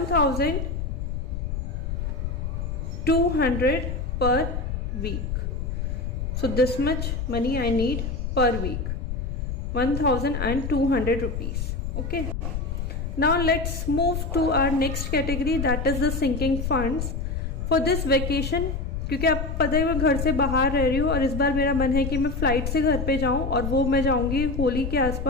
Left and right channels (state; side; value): noise; left; rumble, 3 dB below the sound